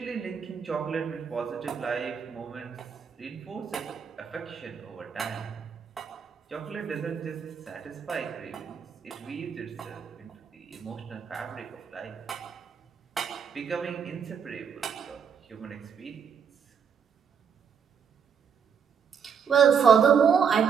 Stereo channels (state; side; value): quieter; left; 7.1 dB